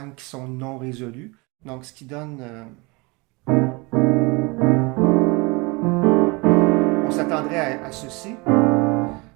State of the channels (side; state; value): left; quieter; 26.8 dB